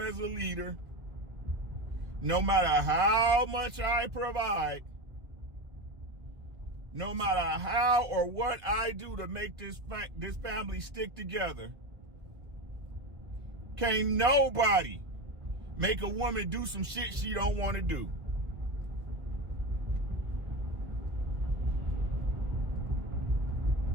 as a leader, no matter how much I provide, no matter how or what I do to make this family stick together, can't nobody make a woman do some shit she don't want to do.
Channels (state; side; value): late; left; 1.2 ms